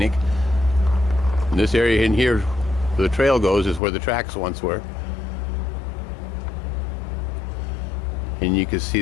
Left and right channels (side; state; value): right; drops out; at 3.8 s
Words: And this area in here where the trail goes is where the tracks once were. And you can see